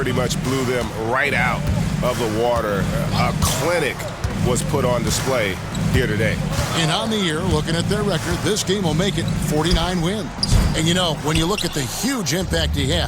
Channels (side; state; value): both; identical; correlation 1.00